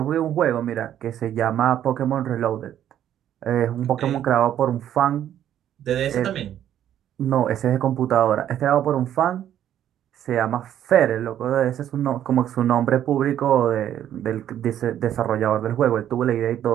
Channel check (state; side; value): quieter; left; 10.8 dB